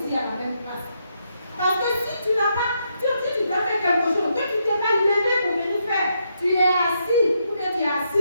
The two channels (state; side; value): inverted; both; correlation -0.79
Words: à la même place. Parce que si tu n'as pas, tu dois faire quelque chose, que tu ne t'es pas levé pour venir faire, tu es assis, ou bien tu es